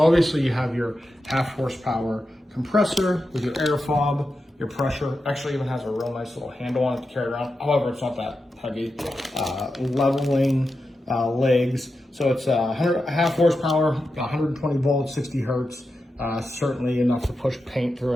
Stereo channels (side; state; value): both; normal; correlation 0.90